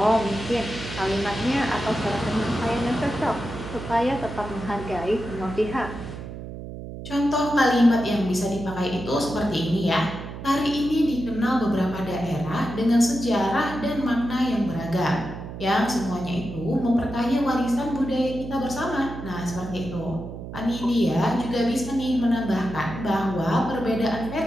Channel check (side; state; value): right; noise; hum, 10 dB below the sound